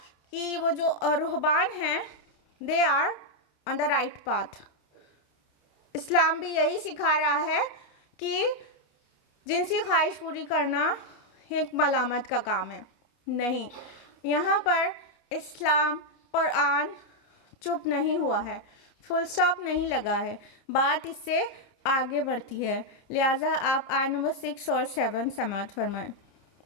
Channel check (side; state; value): right; late; 29 ms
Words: کہ وہ جو رہبان ہیں they are on the right path. اسلام بھی یہی سکھا رہا ہے کہ جنسی خواہش پوری کرنا ایک ملامت کا کام ہے. نہیں، یہاں پر اسلام قرآن چپ نہیں ہوا ہے، فل سٹاپ نہیں لگا ہے، بات اس سے آگے بڑھتی ہے. لہٰذا آپ آیت نمبر 6 اور 7 سماعت فرمائیں.